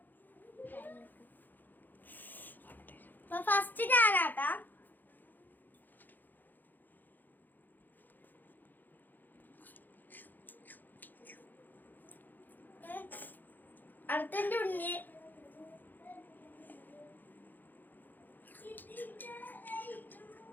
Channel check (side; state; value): right; late; 0.087 ms